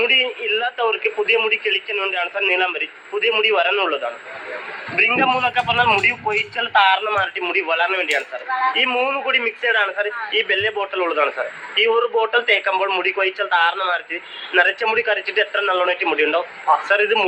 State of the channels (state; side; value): identical; both; correlation 1.00